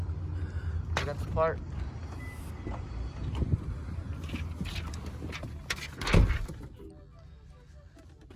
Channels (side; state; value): both; identical; correlation 1.00